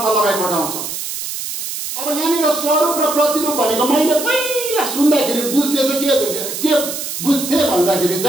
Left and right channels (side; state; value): right; noise; hiss, 6 dB below the sound